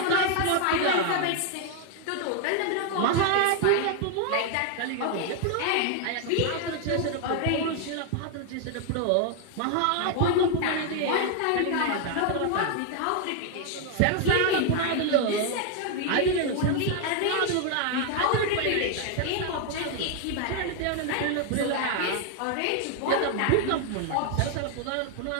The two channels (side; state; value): both; different; correlation 0.00